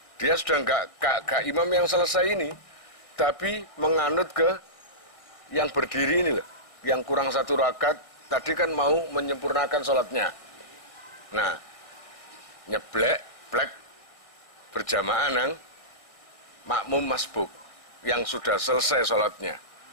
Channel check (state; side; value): late; right; 1.6 ms